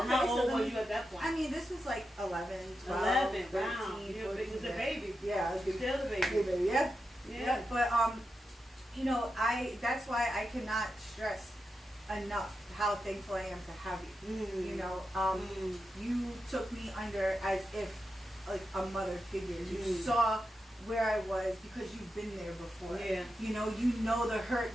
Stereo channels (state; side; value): normal; both; correlation 0.88